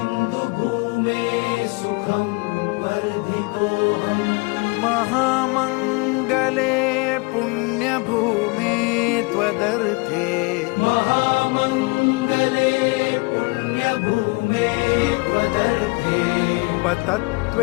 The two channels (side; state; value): right; quieter; 28.0 dB